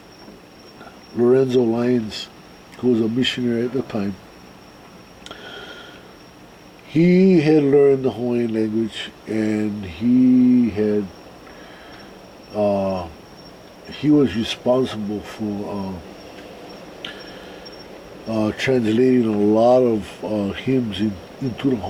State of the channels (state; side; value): identical; both; correlation 1.00